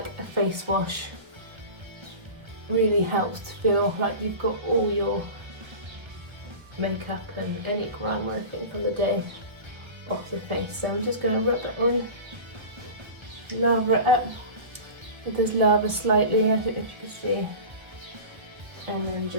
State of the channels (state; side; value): late; left; 1.2 ms